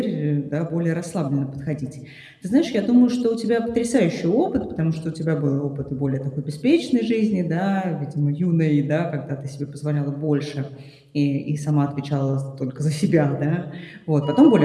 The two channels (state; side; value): identical; both; correlation 1.00